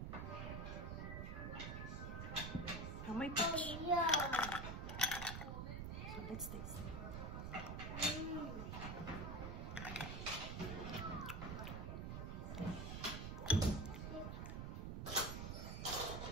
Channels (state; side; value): noise; right; rumble, 4 dB below the sound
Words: May peach. So let's taste.